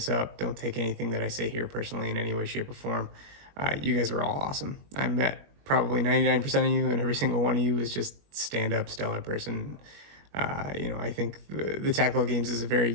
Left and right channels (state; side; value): late; left; 21 ms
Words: up, don't take anything that I say here personally in any way, shape, or form. You guys were all awesome. I met probably 99% of you, and every single one of you was just stand up, stellar person. I think the tactical games is a very